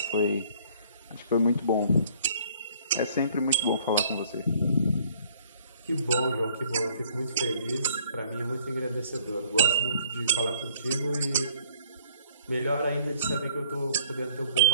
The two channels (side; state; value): both; inverted; correlation -0.59